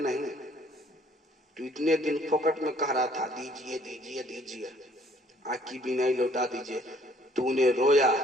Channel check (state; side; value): normal; both; correlation 0.60